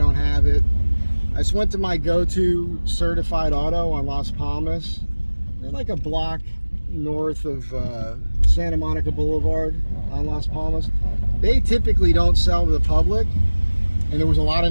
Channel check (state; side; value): inverted; both; correlation -1.00